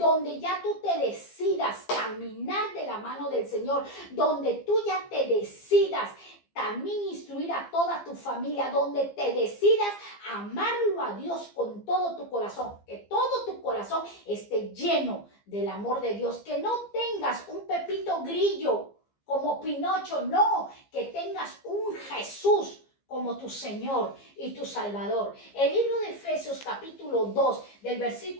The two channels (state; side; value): late; right; 15 ms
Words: ya tú te decidas caminar de la mano del Señor, donde tú ya te decidas también instruir a toda tu familia, donde te decidas amarlo a Dios con todo tu corazón, que todo tu corazón esté lleno del amor de Dios, que no tengas un Pepito Grillo como Pinocho, no, que tengas un Jesús como tu Señor y tu Salvador. El libro de Efesios capítulo 2 del